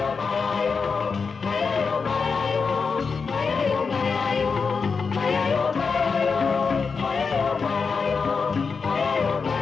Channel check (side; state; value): right; quieter; 5.2 dB